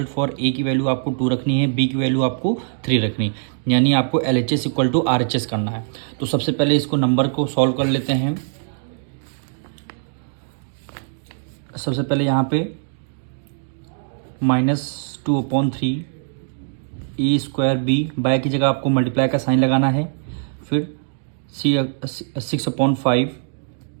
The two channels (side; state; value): left; silent; digital silence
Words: for a की वैल्यू आपको 2 रखनी है, बी की वैल्यू आपको 3 रखनी, यानी आपको LHS इक्वल टू RHS करना है। तो सबसे पहले इसको नंबर को सॉल्व कर लेते हैं। सबसे पहले यहाँ पे -2/3 ए स्क्वायर बी बाय की जगह आपको मल्टीप्लाई का साइन लगाना है, फिर 6/5